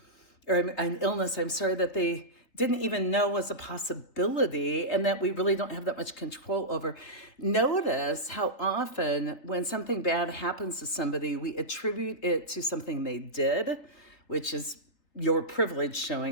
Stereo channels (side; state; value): right; late; 3.5 ms